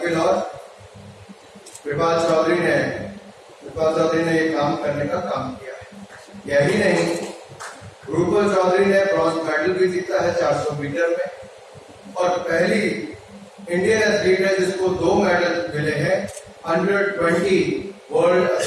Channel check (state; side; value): identical; both; correlation 1.00